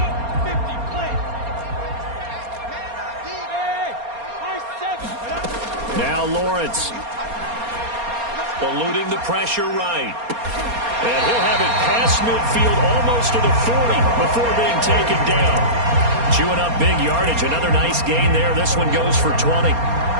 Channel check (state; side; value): late; left; 4.3 ms